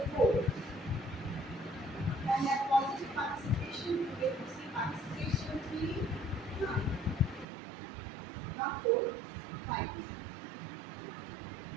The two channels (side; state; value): left; drops out; at 7.5 s